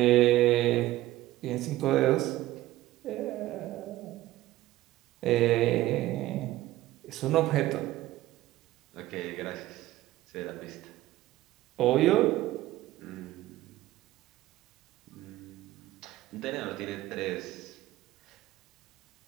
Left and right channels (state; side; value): quieter; left; 16.0 dB